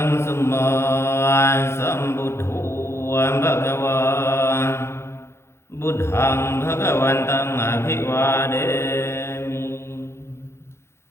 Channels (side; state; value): right; late; 0.13 ms